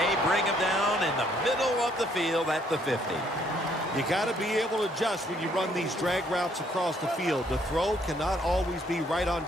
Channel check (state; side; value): normal; both; correlation 0.67